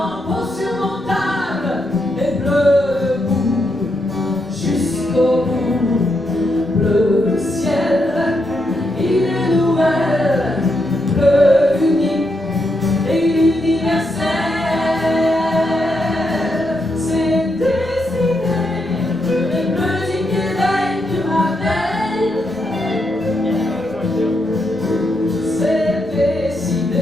insurmontable et bleu debout jusqu'au bout. Bleu ciel, il est nouvelle, bleu unique et universel. C'est décidé, le bleu du Québec du rappel. C'est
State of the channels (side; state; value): both; normal; correlation 0.81